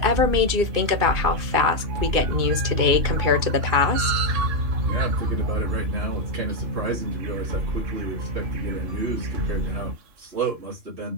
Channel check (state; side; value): late; left; 2.5 ms